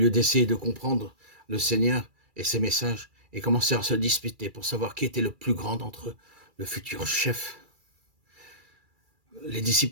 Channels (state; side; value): late; left; 2.3 ms